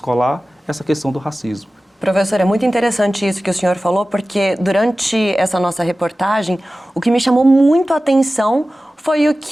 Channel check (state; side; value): normal; both; correlation 0.96